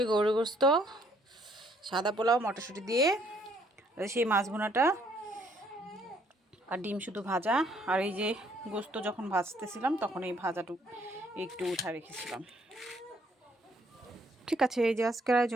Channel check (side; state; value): both; normal; correlation 0.65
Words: গরু গোস্ত, সাদা পোলাও, মটরশুঁটি দিয়ে সেই মাছ ভুনাটা আর ডিম শুধু ভাজা, আর এই যে গোস্ত যখন ভাজতেছিলাম তখন এই ভাজাটুকু একটু উঠা রেখেছিলাম। ঠিক আছে, এই যে আজকের